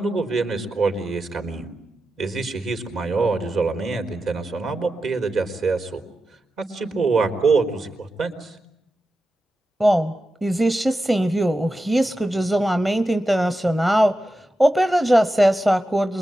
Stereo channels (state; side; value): normal; both; correlation 0.91